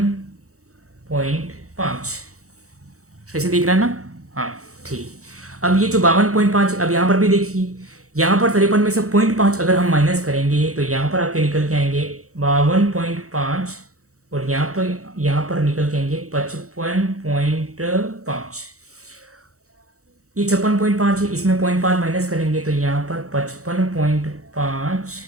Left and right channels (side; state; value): left; late; 0.65 ms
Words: सही से दिख रहा है ना, हाँ ठीक। अब ये जो 52.5, अब यहाँ पर भी देखिए, यहाँ पर 53 में से 0.5 अगर हम माइनस करेंगे तो यहाँ पर आपके निकल के आएंगे 52.5 और यहाँ पर निकल के आएंगे 55.5। ये 56.5 है, इसमें 0.5 माइनस करेंगे तो यहाँ पर 55.5